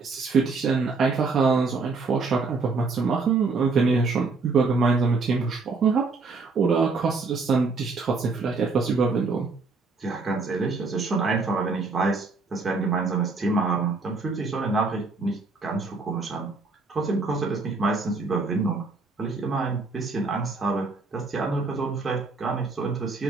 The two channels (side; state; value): left; quieter; 4.0 dB